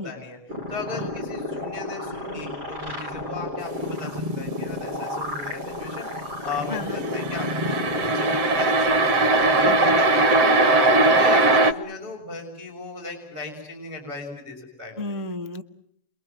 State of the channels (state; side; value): late; left; 7.6 ms